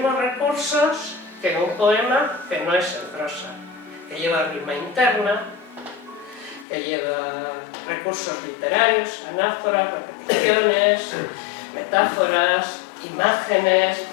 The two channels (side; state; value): right; drops out; at 6.7 s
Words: recursos que un poema que no es en prosa, que lleva rima interna, que lleva recursos literarios, anáforas, repeticiones, metáforas, imágenes,